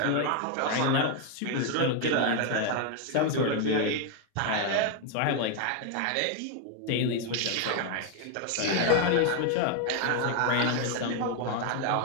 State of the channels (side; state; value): both; different; correlation 0.01